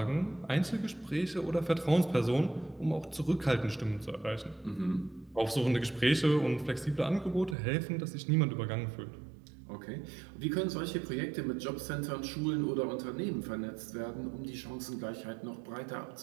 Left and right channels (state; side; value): drops out; left; at 7.6 s